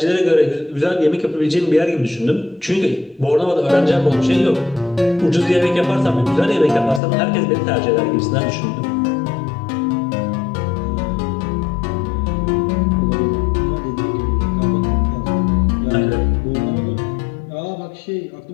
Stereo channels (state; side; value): drops out; right; at 7.0 s